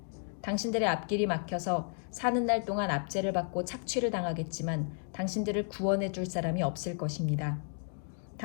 당신들의 앞길이 막혀서 사는 날 동안 압제를 받고 착취를 당하겠지만 당신들을 구원해 줄 사람이 없을 것입니다.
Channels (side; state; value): right; silent; 56 dB below the other